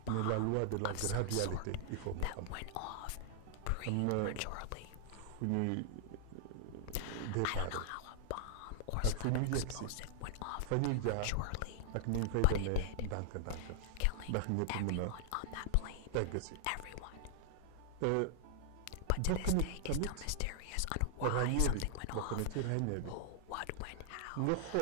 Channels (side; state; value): both; different; correlation 0.00